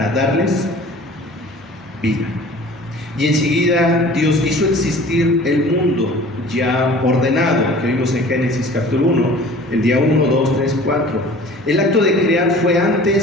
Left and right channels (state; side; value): normal; both; correlation 0.45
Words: darles vida. Y enseguida Dios hizo existir el mundo ya ordenado, que vimos en Génesis capítulo 1, el día 1, 2, 3, 4. El acto de crear fue